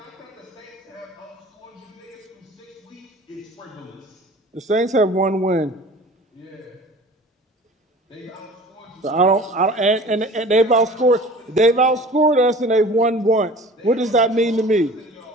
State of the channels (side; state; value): both; normal; correlation 0.43